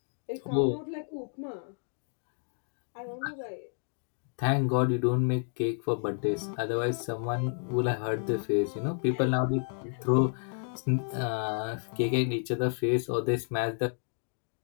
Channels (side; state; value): right; silent; 57 dB below the other